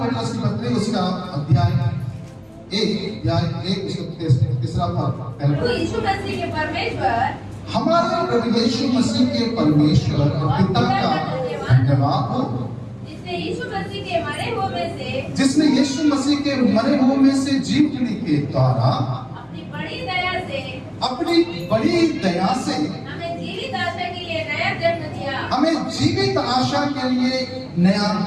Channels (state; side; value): identical; both; correlation 1.00